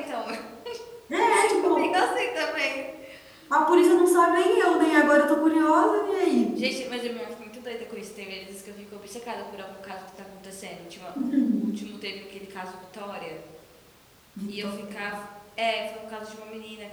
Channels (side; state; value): both; identical; correlation 1.00